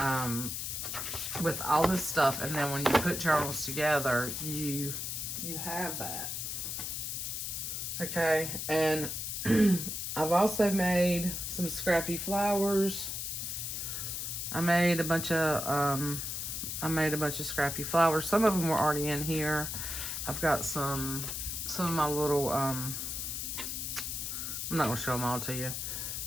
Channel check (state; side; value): noise; left; hiss, 4 dB below the sound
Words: with all this stuff. And then when you put journals together, you have that. Okay, and I've also made some scrappy flowers. I made a bunch of scrappy flowers. Some of them were already in here. I've got some of my little, I'm not going to show them all to you,